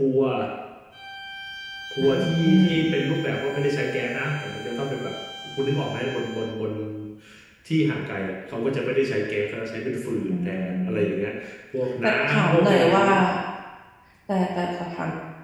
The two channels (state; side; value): identical; both; correlation 1.00